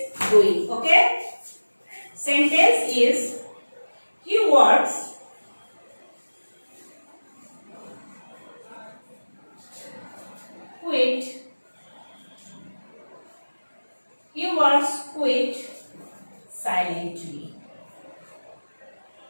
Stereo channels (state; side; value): inverted; both; correlation -1.00